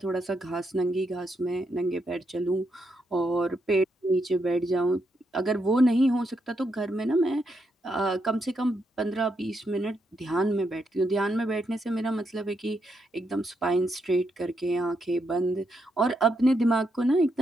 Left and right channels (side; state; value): both; normal; correlation 0.80